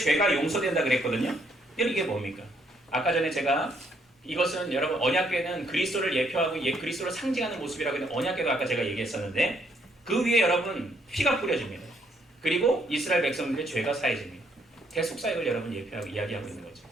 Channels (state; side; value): normal; both; correlation 0.70